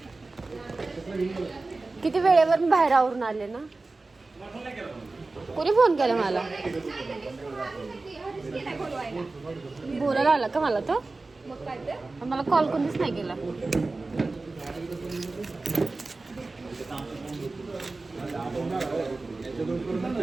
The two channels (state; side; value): quieter; left; 3.4 dB